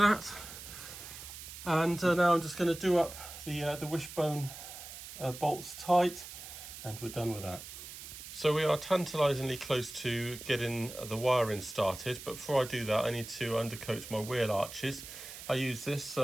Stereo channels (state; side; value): noise; right; hiss, 12 dB below the sound